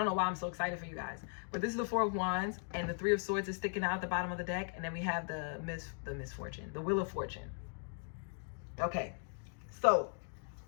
know why I'm so excited for you guys. But this is the 4 of Wands, and the 3 of Swords is sticking out at the bottom of the deck. And then we have the misfortune, the Wheel of Fortune. Okay, so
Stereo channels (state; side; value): silent; right; 52 dB below the other